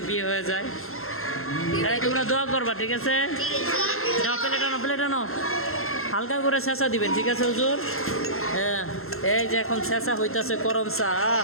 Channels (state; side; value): late; right; 0.62 ms